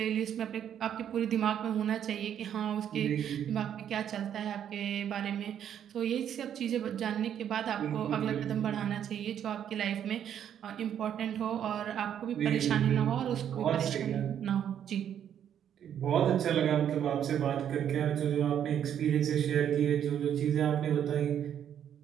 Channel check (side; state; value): left; quieter; 9.4 dB